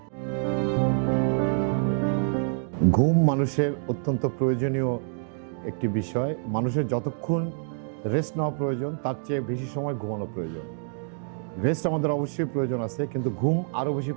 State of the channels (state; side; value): silent; left; digital silence